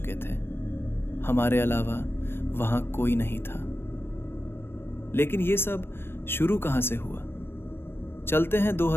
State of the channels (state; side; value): late; right; 0.11 ms